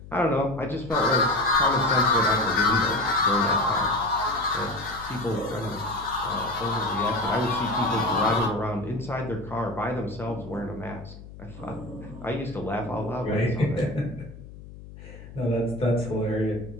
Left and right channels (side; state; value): left; noise; hum, 16 dB below the sound